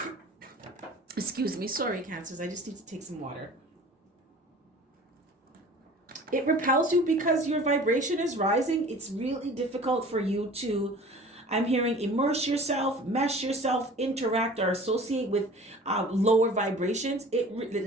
Excuse me. Sorry, Cancers. I just need to take some water. It repels you because your vibration is rising. It's really difficult for you to, I'm hearing, immerse yourself, mesh yourself, interact, or associate with lower vibrations. It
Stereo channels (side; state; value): both; normal; correlation 0.44